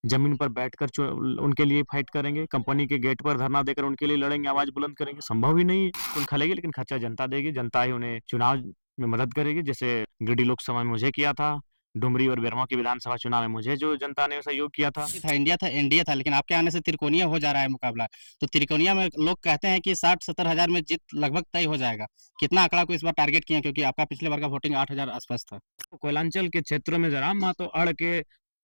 ज़मीन पर बैठकर उनके लिए फाइट करेंगे, कंपनी के गेट पर धरना देकर उनके लिए लड़ेंगे, आवाज़ बुलंद करेंगे, संभव ही नहीं है। तो खलेगी लेकिन खर्चा जनता देगी, जनता ही उन्हें चुनाव में मदद करेगी, जैसे गिरिडीह लोकसभा में मुझे किया था, डुमरी और बेरमो के विधानसभा चुनाव में मुझे जो जनता ने सहयोग किया था। था इंडिया था, लेकिन आपके आने से त्रिकोणीय हो जा रहा है मुकाबला। तो त्रिकोणीय में लोग कहते हैं कि 60-70 हजार में जीत लगभग तय हो जाएगा। कितना आंकड़ा को इस बार टारगेट किया, क्योंकि आपका पिछले बार का वोटिंग 8,000 आसपास था। कोयलांचल के क्षेत्रों में जराम महतो अड़ के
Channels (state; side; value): inverted; both; correlation -1.00